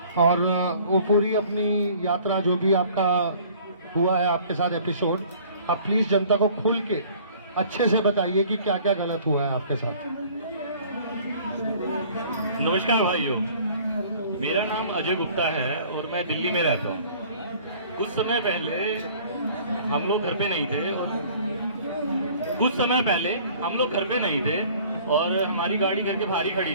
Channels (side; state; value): both; inverted; correlation -0.52